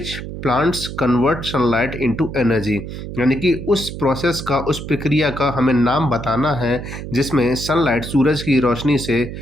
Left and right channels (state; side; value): noise; right; hum, 8 dB below the sound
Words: plants convert sunlight into energy, यानी कि उस प्रोसेस का, उस प्रक्रिया का हमें नाम बताना है जिसमें सनलाइट, सूरज की रोशनी से